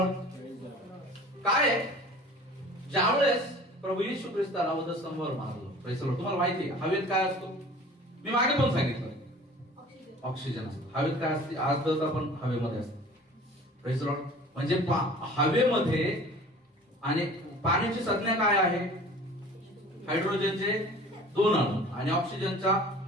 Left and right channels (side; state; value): both; normal; correlation 0.45